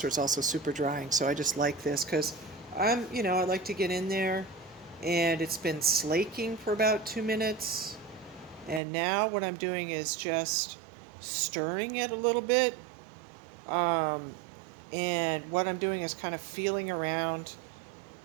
is also super drying. So I just like this because I like to get in there and it's been slaking for about 2 minutes. And now what I'm doing is just stirring it a little bit. Um, and what I'm doing is kind of feeling around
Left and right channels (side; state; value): left; drops out; at 8.8 s